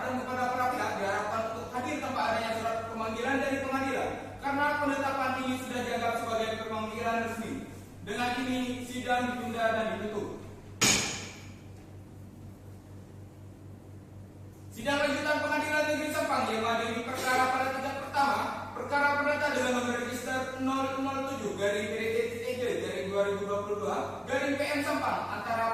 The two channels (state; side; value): identical; both; correlation 1.00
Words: kepada para pihak diharapkan untuk hadir tanpa adanya surat pemanggilan dari pengadilan karena penetapan ini sudah dianggap sebagai pemanggilan resmi. Dengan ini sidang ditunda dan ditutup. Sidang lanjutan Pengadilan Negeri Sampang yang mengadili perkara pada tingkat pertama, perkara perdata dengan nomor register 007/PDT-2022/PM Sampang